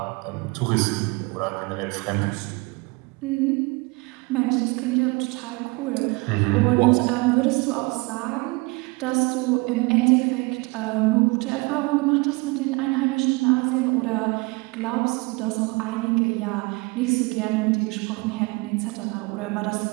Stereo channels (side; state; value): left; quieter; 26.4 dB